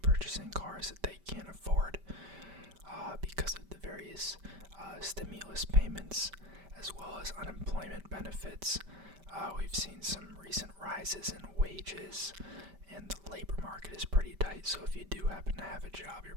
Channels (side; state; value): left; late; 5.1 ms